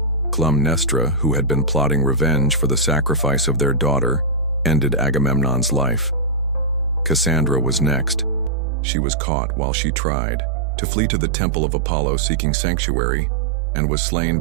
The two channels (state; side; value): drops out; left; at 8.5 s